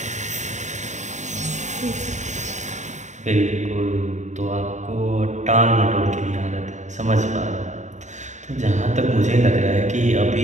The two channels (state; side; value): late; left; 0.34 ms